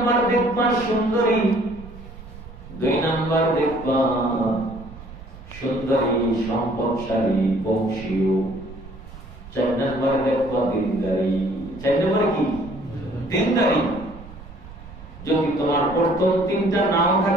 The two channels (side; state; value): right; noise; rumble, 16 dB below the sound